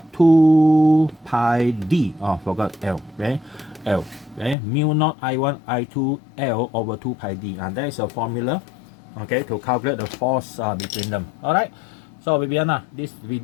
2 pi D. Oh, forgot L. Okay, L. Okay, mu naught I1, I2 L over 2 pi D. And that is a formula. Okay, to calculate the force between them. Alright, so Bibiyanna, this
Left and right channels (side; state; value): right; drops out; at 4.5 s